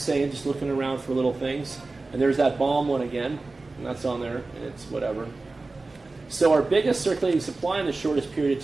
saying, just looking around for little things. And there's that bomb one again. And that's on there. And it's whatever. So our biggest circulating supply in the shortest period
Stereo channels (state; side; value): quieter; left; 3.5 dB